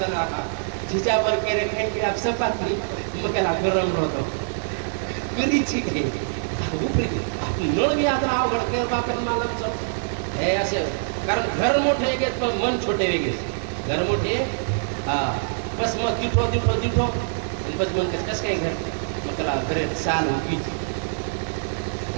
राहा जिच्या पर केले काही की आप सपातली मग त्याला गरम होतो गरीची काही उपरी नळ बी आता अवघड केलं बापेर मला हे असे, कारण घर मोठे वेगळेच पण मन छोटे वेगळेच। घर मोठे बस मग दिठो दिठो दिठो आणि बस मन कसं काय घर मग त्याला घरे चाल उगीच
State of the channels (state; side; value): silent; left; 62 dB below the other